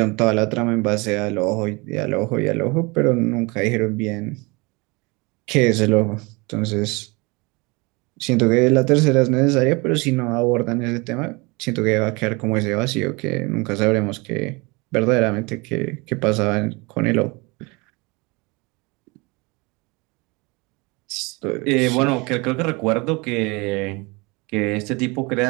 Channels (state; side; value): quieter; left; 26.7 dB